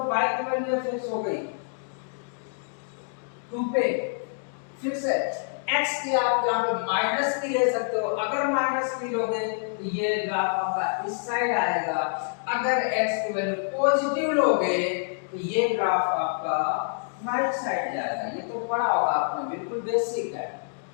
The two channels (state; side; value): silent; right; digital silence